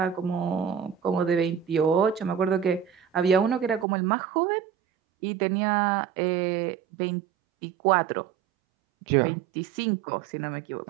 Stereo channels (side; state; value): left; drops out; at 3.9 s